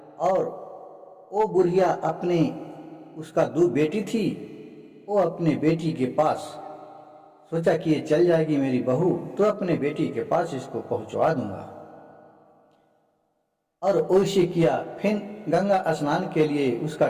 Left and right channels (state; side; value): identical; both; correlation 1.00